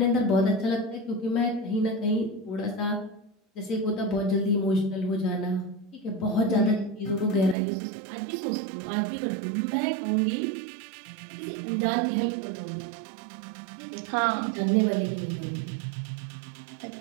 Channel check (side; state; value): left; drops out; at 7.6 s